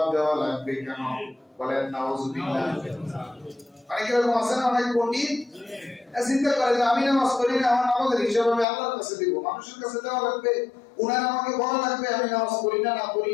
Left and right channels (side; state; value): right; drops out; at 8.7 s